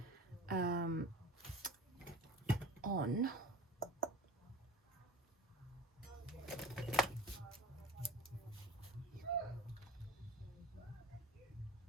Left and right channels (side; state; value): both; normal; correlation 0.38